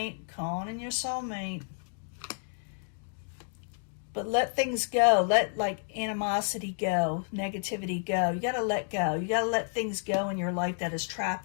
Calling in your soulmate. But let things go. Let animosity go. Negativity go. You got to let go. You got to let things go in your life that is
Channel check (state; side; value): silent; right; digital silence